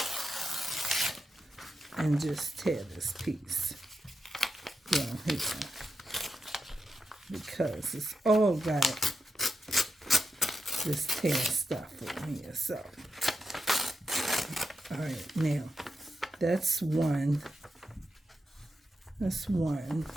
And just tear this piece down here because it's all got this tear stuff on here. So, all right, now that's one. That's one.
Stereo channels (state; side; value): normal; both; correlation 0.87